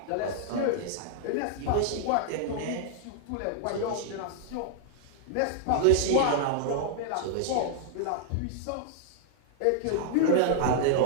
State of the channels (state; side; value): different; both; correlation -0.01